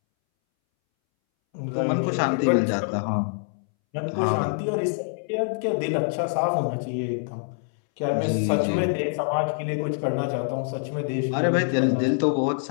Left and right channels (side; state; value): right; silent; 62 dB below the other